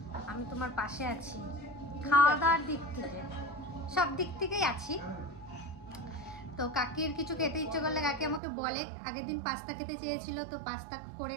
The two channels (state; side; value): drops out; left; at 8.4 s